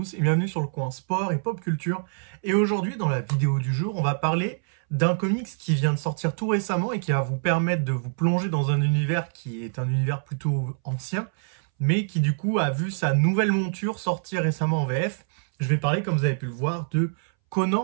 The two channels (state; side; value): silent; left; 61 dB below the other